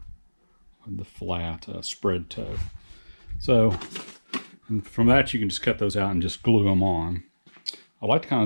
the flat spread toe. So from that you can just cut those out and just glue them on. I like to kind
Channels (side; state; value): both; inverted; correlation -1.00